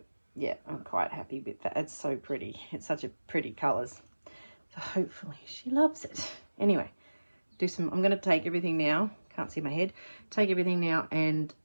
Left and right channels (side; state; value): both; inverted; correlation -1.00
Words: yeah, I'm quite happy with that. It's so pretty. It's such a pretty colours. So hopefully she loves it. Anyway, I'm going to take everything now. Can't see my head. Take everything now and